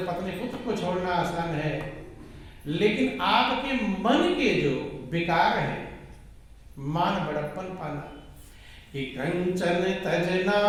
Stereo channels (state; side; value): identical; both; correlation 1.00